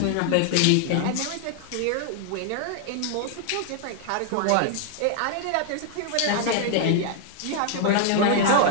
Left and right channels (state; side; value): different; both; correlation 0.00